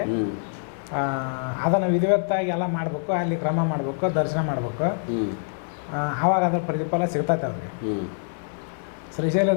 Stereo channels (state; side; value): silent; right; 59 dB below the other